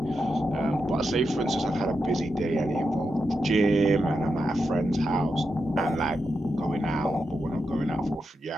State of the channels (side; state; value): both; normal; correlation 0.87